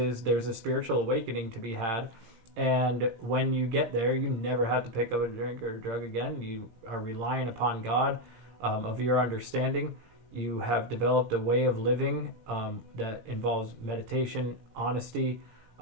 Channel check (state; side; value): late; left; 17 ms